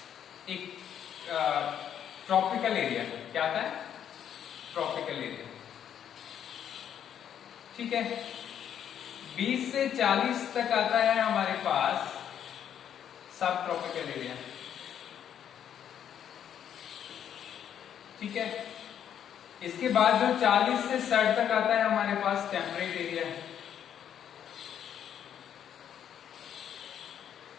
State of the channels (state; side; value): quieter; right; 9.3 dB